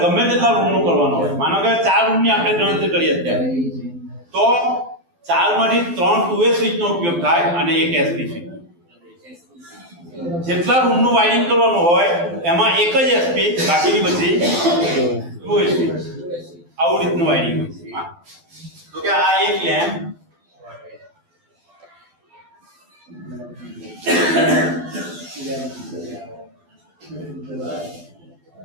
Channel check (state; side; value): late; left; 12 ms